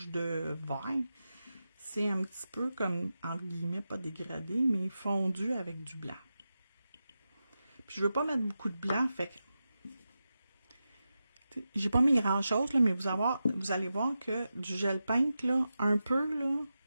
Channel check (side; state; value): both; inverted; correlation -0.91